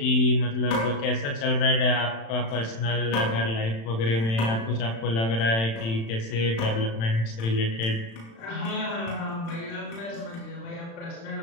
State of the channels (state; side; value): late; right; 35 ms